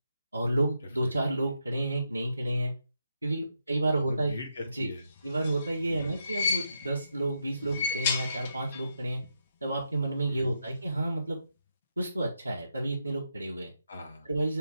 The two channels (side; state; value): both; inverted; correlation -0.82